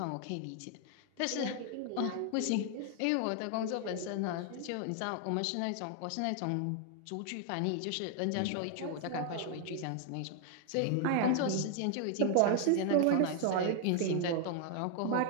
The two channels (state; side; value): different; both; correlation 0.00